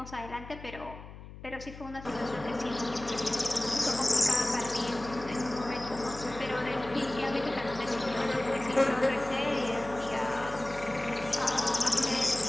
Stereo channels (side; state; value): left; noise; hum, 15 dB below the sound